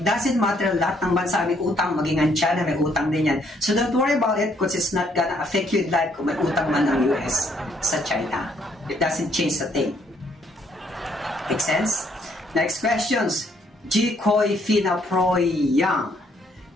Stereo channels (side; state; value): both; normal; correlation 0.69